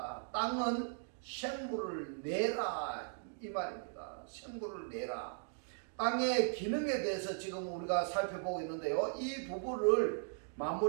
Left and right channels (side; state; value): left; silent; digital silence